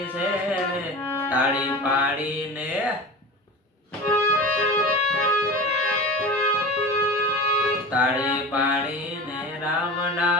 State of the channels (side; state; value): both; normal; correlation 0.31